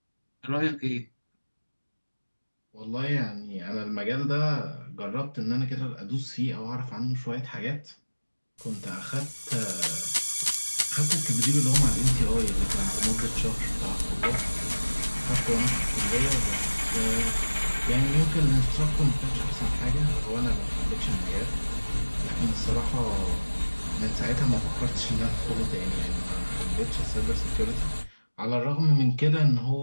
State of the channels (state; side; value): inverted; both; correlation -1.00